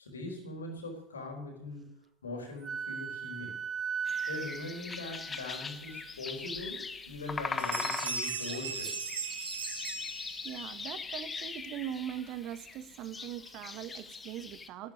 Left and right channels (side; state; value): both; normal; correlation 0.35